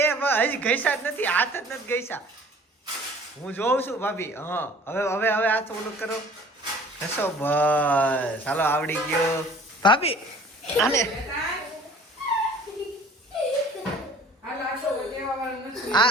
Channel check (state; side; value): normal; both; correlation 0.50